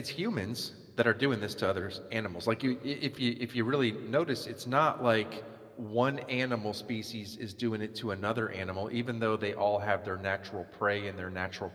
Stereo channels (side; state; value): both; identical; correlation 1.00